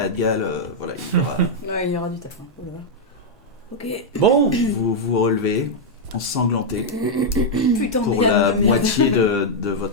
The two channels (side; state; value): both; normal; correlation -0.03